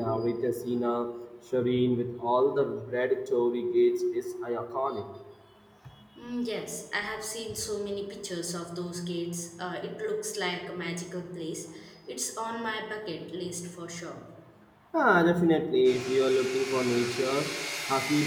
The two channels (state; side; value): identical; both; correlation 1.00